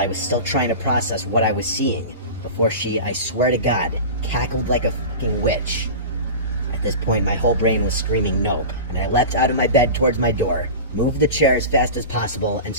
was still trying to process what I was seeing, before she, I swear to God, cackled like a fucking witch. At this point, my whole brain was screaming nope, and I leapt out of my bed towards my door, moved the chair as fast as possible, and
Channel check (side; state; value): both; inverted; correlation -0.30